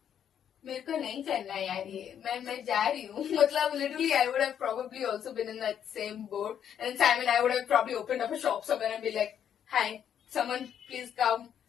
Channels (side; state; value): right; quieter; 9.1 dB